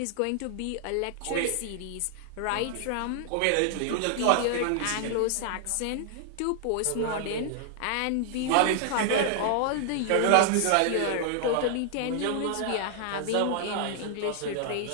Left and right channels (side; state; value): both; different; correlation 0.00